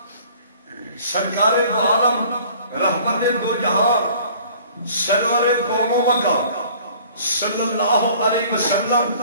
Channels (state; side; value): inverted; both; correlation -0.51